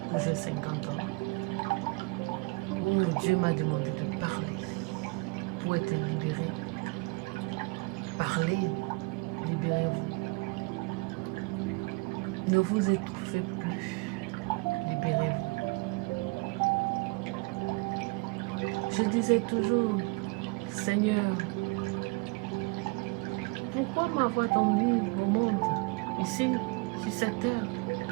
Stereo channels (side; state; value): left; quieter; 27.2 dB